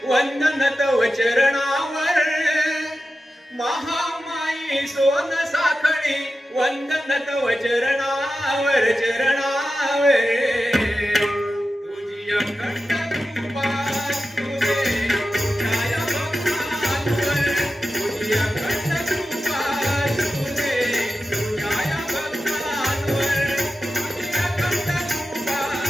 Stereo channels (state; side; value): normal; both; correlation 0.92